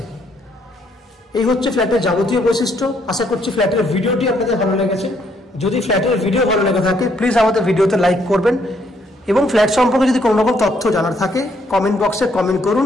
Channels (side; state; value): both; normal; correlation 0.70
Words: এই হচ্ছে ফ্ল্যাটের যাবতীয় বৈশিষ্ট্য। আশা করছি ফ্ল্যাটের ভিডিওটি আপনাদের ভালো লেগেছে। যদি ফ্ল্যাটের ভিডিও ভালো লেগে থাকে প্লিজ আমাদের ভিডিওতে লাইক করবেন, এবং ফ্ল্যাট সম্পর্কে যদি কোনো রকম তথ্য জানার থাকে কমেন্ট বক্সে কমেন্ট